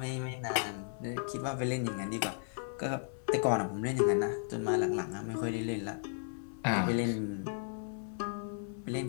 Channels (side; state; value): right; silent; 55 dB below the other